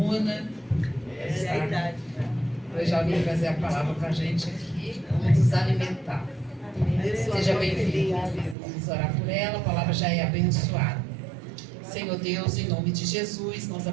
Hoje ela vem trazer a palavra para a gente aqui, nos alimentar. Seja bem-vinda. Vamos orar por ela, a palavra já é abençoada. Senhor Deus, em nome de Jesus, nós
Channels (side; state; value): left; drops out; at 8.6 s